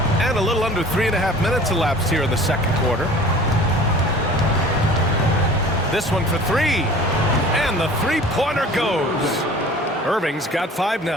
And a little under 3.5 minutes elapsed here in the second quarter. This one for 3. And the three-pointer goes. Irving's got 5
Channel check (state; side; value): normal; both; correlation 0.45